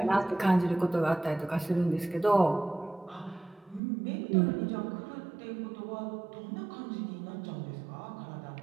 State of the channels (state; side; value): drops out; left; at 3.8 s